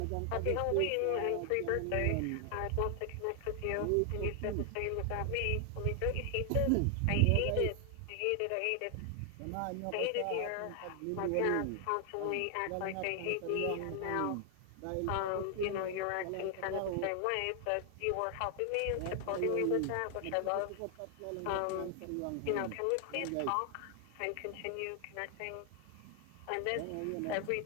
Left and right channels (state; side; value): different; both; correlation 0.00